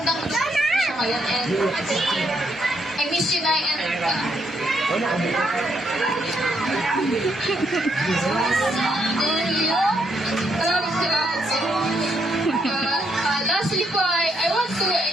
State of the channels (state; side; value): normal; both; correlation 0.76